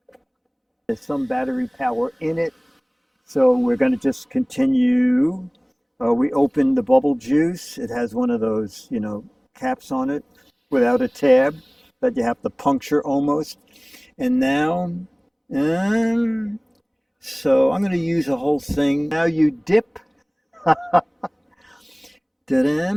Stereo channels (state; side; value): identical; both; correlation 1.00